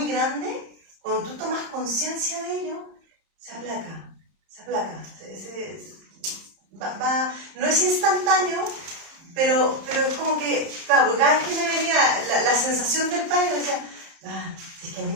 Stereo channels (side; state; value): left; late; 30 ms